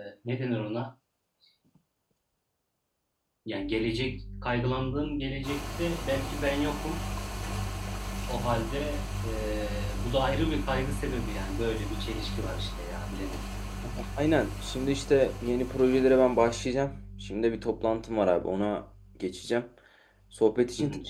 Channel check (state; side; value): identical; both; correlation 1.00